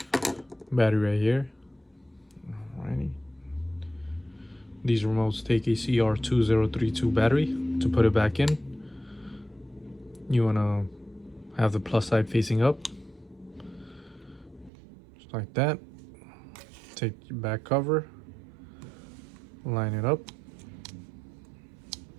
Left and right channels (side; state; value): left; drops out; at 14.7 s